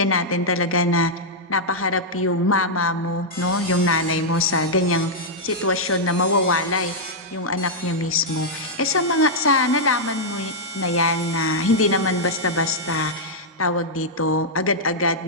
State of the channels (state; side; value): normal; both; correlation -0.07